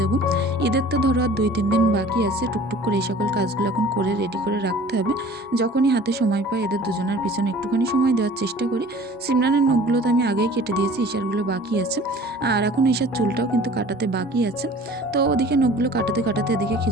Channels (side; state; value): both; normal; correlation 0.47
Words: দেবো। ঈদের তো ধরো আর 2-3 দিন বাকি আছে। টুকটুক করে এই সকল কাজগুলো এখন করে রেডি করে রাখতে হবে। যখনই হাতে সময় পাই এদের দুজনের পিছনে একটুখানি সময় দেওয়ার চেষ্টা করি। সিমরানের নখগুলো তো আমি আগেই কেটে দিয়েছি, ঈশারগুলো বাকি আছে। আর এখন ঈশার চুলটাও কিন্তু কাটাতে বাকি আছে। তো ওদিকে নখগুলো কাটাতে কাটাতে এদিকে